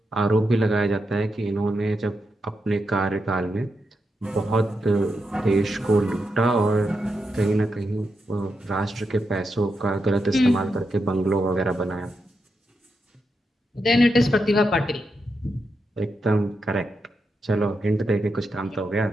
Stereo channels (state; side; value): normal; both; correlation 0.85